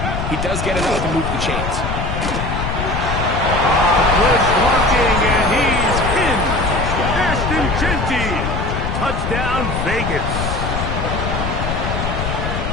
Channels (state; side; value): noise; left; rumble, 3 dB below the sound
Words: he he does get enough to move the chains. Good blocking, and he's in. Ashton Jeanty. Touchdown, Vegas.